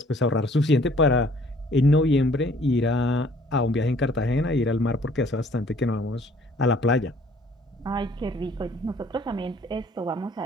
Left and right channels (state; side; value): normal; both; correlation 0.57